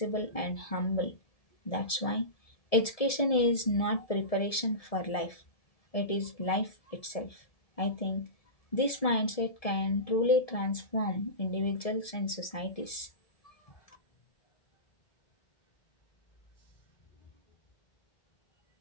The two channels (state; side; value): late; right; 1.7 ms